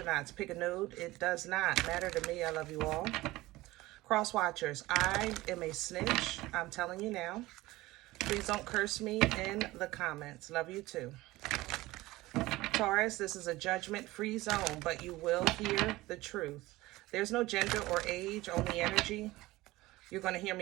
Pick a node. It does not matter to me. I love you all. Cross watchers, I am a snitch. I'm telling you now. Please don't curse me in the comments. Love you too. Taurus, this is a judgment-free zone, but you will hear the truth. There's no gender or age, only energy. You're going to hear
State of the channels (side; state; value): left; quieter; 18.8 dB